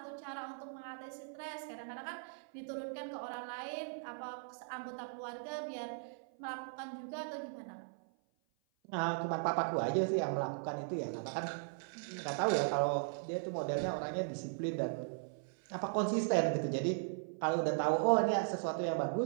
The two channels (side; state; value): left; silent; 52 dB below the other